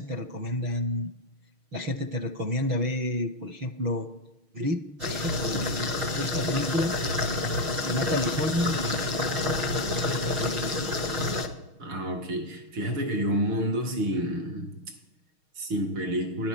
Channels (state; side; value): late; left; 6.4 ms